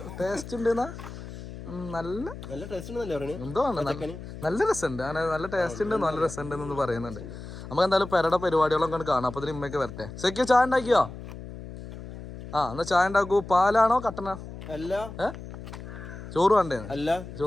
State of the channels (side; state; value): left; noise; hum, 12 dB below the sound